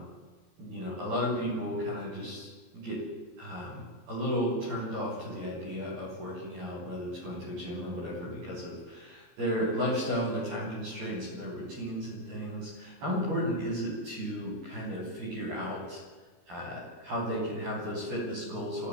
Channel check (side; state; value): left; late; 23 ms